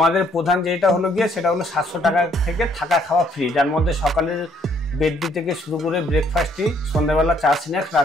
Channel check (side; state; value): both; normal; correlation 0.66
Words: প্রধান যেটা হলো গিয়ে সেটা হলো 700 টাকা থেকে থাকা খাওয়া ফ্রি, যার মধ্যে সকালের বেডটি থেকে শুরু করে ব্রেকফাস্টটি, সন্ধ্যাবেলা চা স্ন্যাক্স,